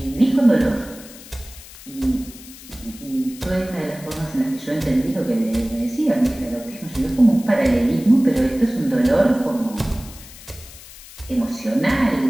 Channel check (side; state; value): left; noise; hiss, 18 dB below the sound